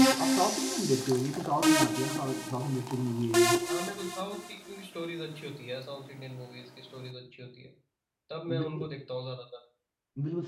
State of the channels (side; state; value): both; identical; correlation 1.00